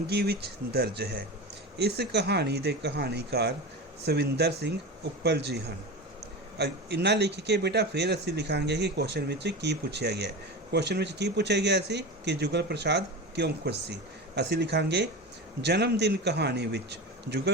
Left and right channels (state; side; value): normal; both; correlation 0.26